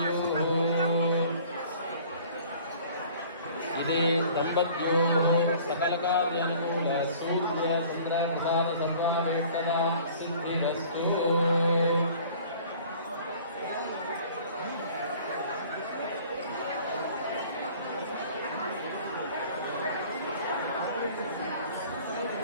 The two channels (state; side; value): inverted; both; correlation -0.50